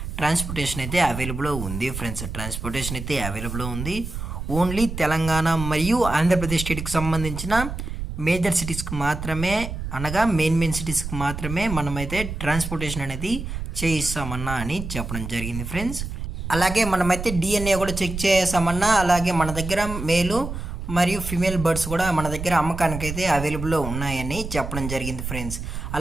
ట్రాన్స్పోర్టేషన్ అయితే అవైలబుల్లో ఉంది ఫ్రెండ్స్. ట్రాన్స్పోర్టేషన్ అయితే అవైలబుల్లో ఉంది. ఓన్లీ తెలంగాణ మరియు ఆంధ్రప్రదేశ్ స్టేట్కి సంబంధించిన మేజర్ సిటీస్కి మాత్రమే, అనగా మెయిన్ సిటీస్కి మాత్రమే మనమైతే ట్రాన్స్పోర్టేషన్ అనేది చేయిస్తామన్నా అని చెప్పడం జరిగింది ఫ్రెండ్స్. అలాగే మనమైతే డిఎన్ఏ కూడా చెక్ చేసామన్నా. అలాగే మన దగ్గర మేలు మరియు ఫిమేల్ బర్డ్స్ కూడా మన దగ్గర అమ్మకానికైతే అవైలబుల్లో ఉన్నాయని చెప్పడం జరిగింది ఫ్రెండ్స్.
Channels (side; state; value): right; noise; rumble, 7 dB below the sound